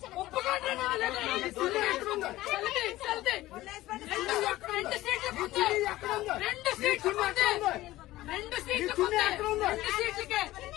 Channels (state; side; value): quieter; right; 16.6 dB